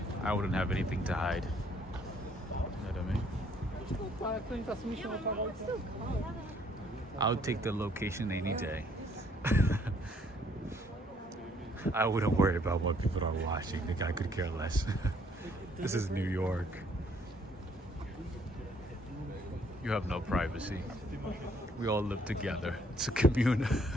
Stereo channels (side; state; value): both; normal; correlation 0.64